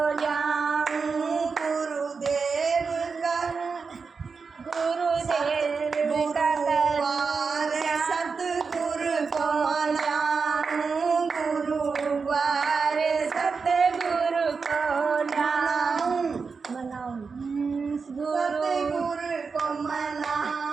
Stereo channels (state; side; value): quieter; left; 5.0 dB